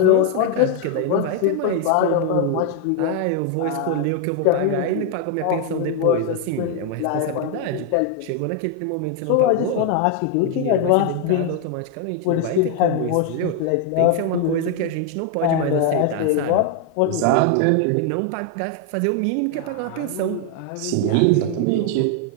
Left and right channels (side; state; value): both; different; correlation 0.01